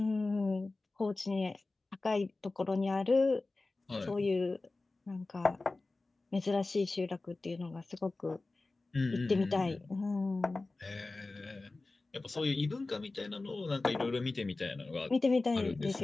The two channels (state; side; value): quieter; right; 3.3 dB